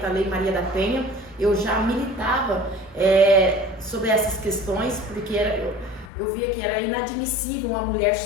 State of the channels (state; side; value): drops out; right; at 6.1 s